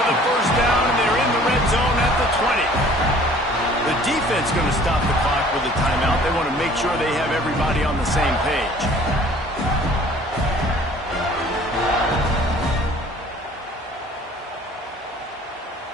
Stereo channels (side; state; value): both; normal; correlation 0.52